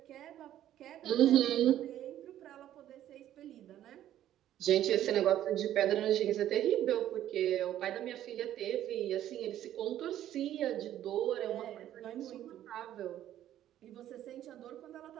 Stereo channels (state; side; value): quieter; left; 12.1 dB